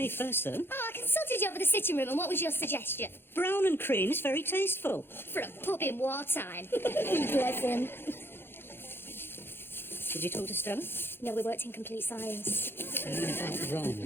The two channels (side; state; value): right; late; 0.11 ms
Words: first, though. Oh, I consulted you over the sitting room, and what was your suggestion? Brown and cream is very tasteful. For a pub in wartime. Bless him. Did you talk to Stella? No, we worked in complete silence. Wrong.